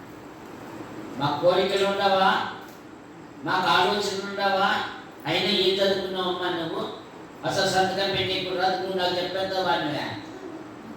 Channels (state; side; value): identical; both; correlation 1.00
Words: మా కోరికలు ఉండవా, మాకు ఆలోచనలు ఉండవా? అయినా ఏం చదువుకున్నావమ్మా నువ్వు? అసలు సంతకం పెట్టేప్పుడు రాదు, నువ్వు నాకు చెప్పేద్దావా?